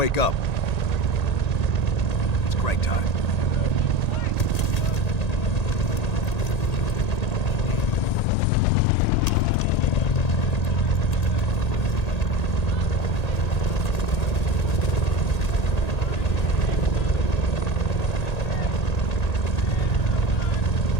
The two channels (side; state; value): right; late; 1.8 ms